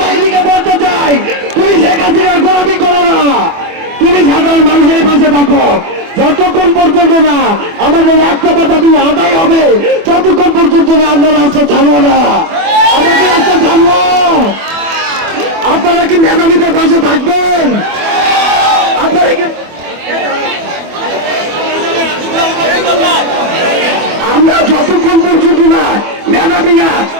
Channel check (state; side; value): late; left; 24 ms